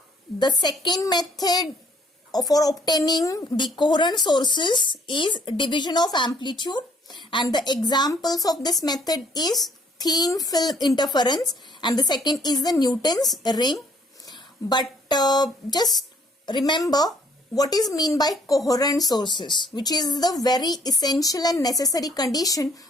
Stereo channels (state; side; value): normal; both; correlation 0.63